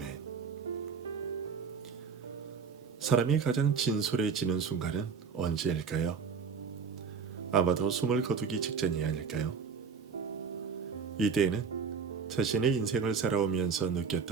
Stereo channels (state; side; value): quieter; left; 5.8 dB